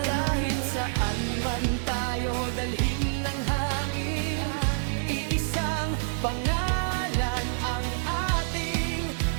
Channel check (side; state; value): left; silent; digital silence